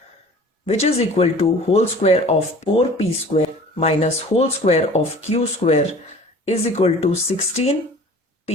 which is equal to whole square of 4p square minus whole square of q square is equal to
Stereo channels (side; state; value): both; normal; correlation 0.46